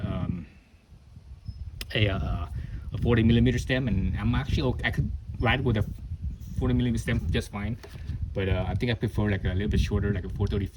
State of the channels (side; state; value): both; identical; correlation 1.00